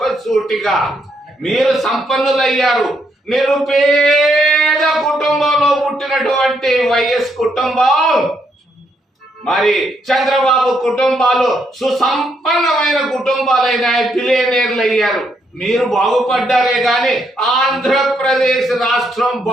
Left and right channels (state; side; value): normal; both; correlation 0.75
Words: మీరు సంపన్నులయ్యారు. నిరుపేద కుటుంబంలో పుట్టినటువంటి వైఎస్ కుటుంబం, మరి చంద్రబాబు కుటుంబాలు సుసంపన్నమైన కుటుంబాలైన బిలియనీర్లు అయ్యారు. మీరు బాగుపడ్డారే గాని ఆంధ్రప్రదేశ్ రాష్ట్రం